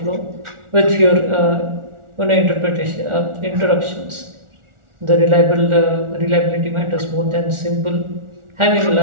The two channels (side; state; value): left; late; 1.4 ms